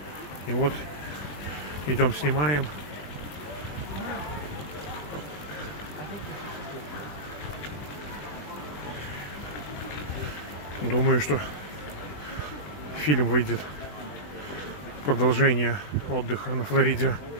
И вот идем снимаем. Думаю, что фильм выйдет «Продолжение отдыха на Флориде»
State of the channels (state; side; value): late; right; 20 ms